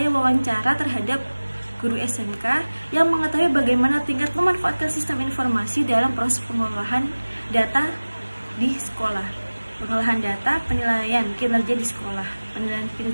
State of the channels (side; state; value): both; inverted; correlation -1.00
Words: wawancara terhadap guru SMK yang mengetahui bagaimana tingkat memanfaatkan sistem informasi dalam proses pengolahan data di sekolah. Pengolahan data, penilaian kinerja di sekolah, penilaian